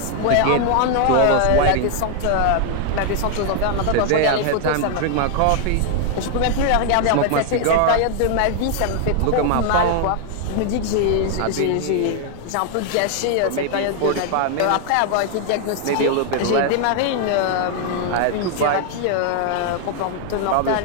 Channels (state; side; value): different; both; correlation 0.00